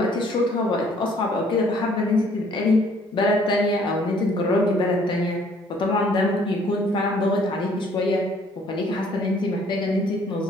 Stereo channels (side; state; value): both; normal; correlation 0.60